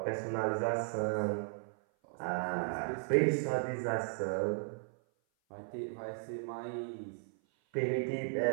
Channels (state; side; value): silent; left; 54 dB below the other